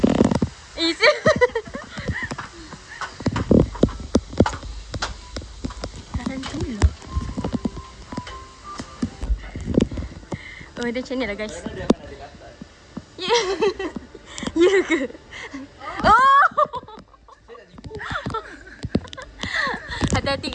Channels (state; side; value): identical; both; correlation 1.00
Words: Isi. Tarantula. Oh, dia macam ni lah guys. Ya. Ya ke? Oh. Hati-hati